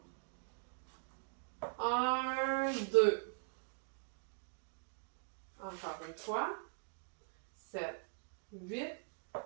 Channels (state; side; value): silent; left; digital silence